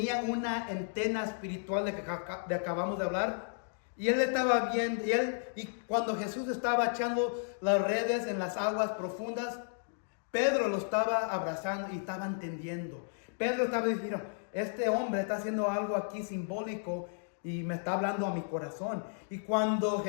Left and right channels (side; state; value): right; silent; digital silence